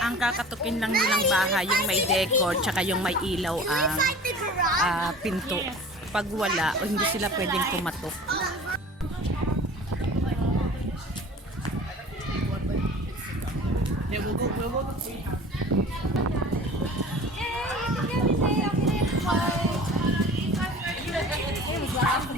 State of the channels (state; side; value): normal; both; correlation 0.42